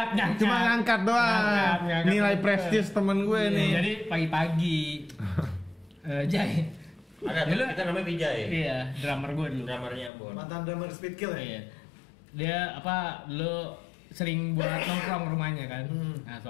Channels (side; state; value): right; drops out; at 10.1 s